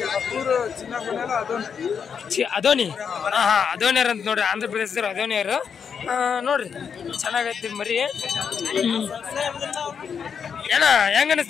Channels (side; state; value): right; quieter; 6.8 dB